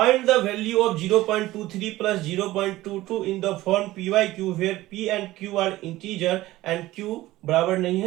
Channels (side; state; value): left; quieter; 16.9 dB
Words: the value of 0.23 plus 0.22 in the form p y q where p and q are integer and q बराबर नहीं